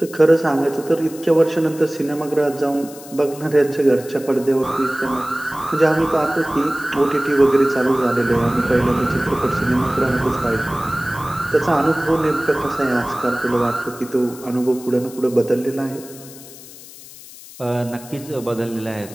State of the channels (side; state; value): left; noise; hiss, 18 dB below the sound